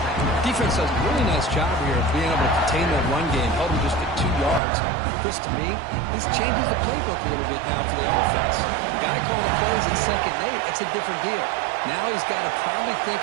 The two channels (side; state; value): left; drops out; at 4.6 s